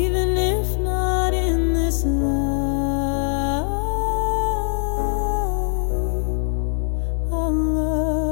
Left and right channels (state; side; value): silent; right; digital silence